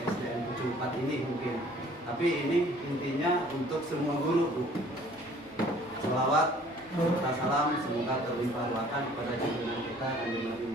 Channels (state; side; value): normal; both; correlation 0.54